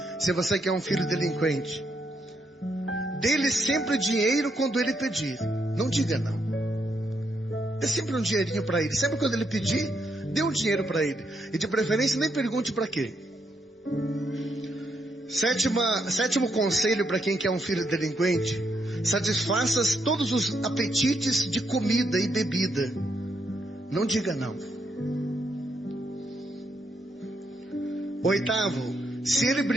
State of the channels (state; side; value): normal; both; correlation 0.78